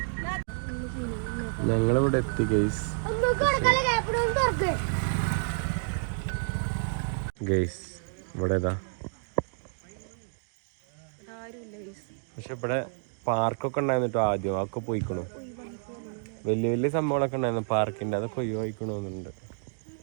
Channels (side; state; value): left; silent; digital silence